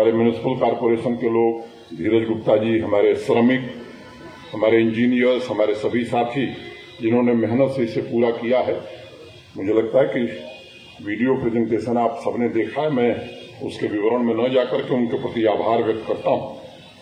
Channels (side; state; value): both; identical; correlation 1.00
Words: म्युनिसिपल कॉर्पोरेशन के लोग, धीरज गुप्ता जी, हमारे श्रमिक, हमारे इंजीनियर्स, हमारे सभी साथी जिन्होंने मेहनत से इसे पूरा किया है, मुझे लगता है कि वीडियो प्रेजेंटेशन आप सबने देखा है, मैं उसके विवरण में न जाकर के उनके प्रति आभार व्यक्त करता हूं।